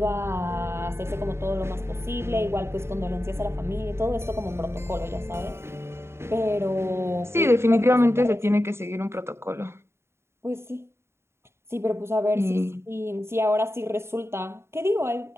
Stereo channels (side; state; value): left; late; 0.12 ms